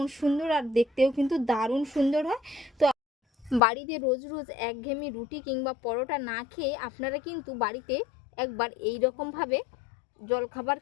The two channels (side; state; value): right; drops out; at 3.6 s